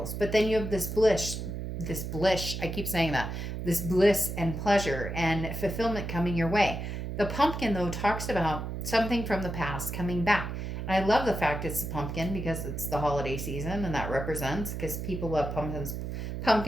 But then you have this bliss, I keep saying that. This bliss and pleasure and fulfillment coming your way. The pumpkin, though, talks about something from the past coming back. And I love the fact it's a pumpkin because it's the holiday season and that represents, because people love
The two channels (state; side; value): noise; right; hum, 5 dB below the sound